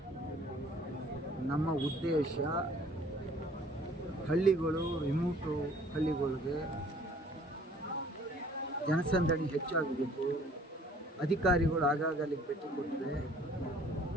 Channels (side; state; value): both; normal; correlation 0.55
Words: ನಮ್ಮ ಉದ್ದೇಶ ಹಳ್ಳಿಗಳು, ರಿಮೋಟು ಹಳ್ಳಿಗಳಿಗೆ ಜನಸಂದಣಿ ಹೆಚ್ಚಾಗಬೇಕು, ಅಧಿಕಾರಿಗಳು ಆಗಾಗ ಅಲ್ಲಿಗೆ ಭೇಟಿ ಕೊಟ್ಟರೆ